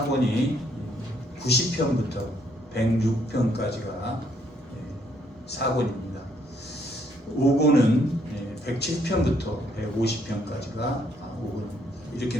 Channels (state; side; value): normal; both; correlation 0.70